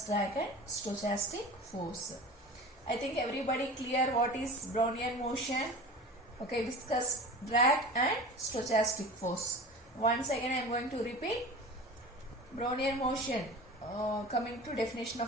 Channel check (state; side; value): normal; both; correlation 0.36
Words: drag and stochastic force. I think everybody clear what is Brownian motion. Okay, viscous drag and stochastic force. Once again I am going to repeat. Brownian motion. Coming to definition